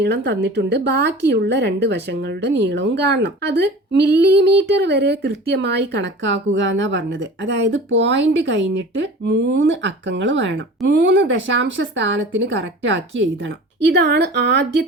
തന്നിട്ടുണ്ട്, ബാക്കിയുള്ള 2 വശങ്ങളുടെ നീളവും കാണണം. അത് മില്ലിമീറ്റർ വരെ കൃത്യമായി കണക്കാക്കുക എന്നാ പറഞ്ഞത്. അതായത് പോയിന്റ് കഴിഞ്ഞിട്ട് 3 അക്കങ്ങൾ വേണം. 3 ദശാംശ സ്ഥാനത്തിന് കറക്റ്റ് ആക്കി എഴുതണം. ഇതാണ്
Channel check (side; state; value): both; normal; correlation 0.39